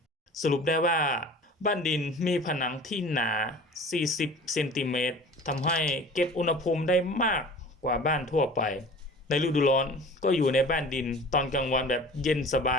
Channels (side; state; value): both; normal; correlation 0.42